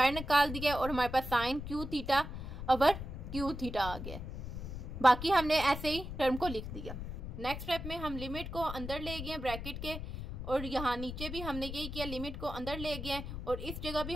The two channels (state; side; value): noise; left; rumble, 7 dB below the sound